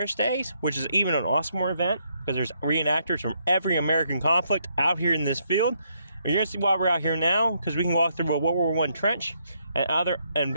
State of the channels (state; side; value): inverted; both; correlation -0.74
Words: Days, which is even an awesomer event, because there's reenactors from every American conflict out here in this field, you're going to see why we're out here now, because we can walk through a World War I trench and other